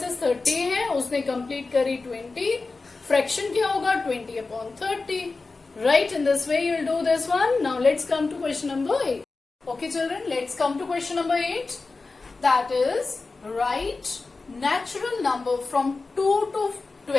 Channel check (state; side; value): quieter; right; 3.8 dB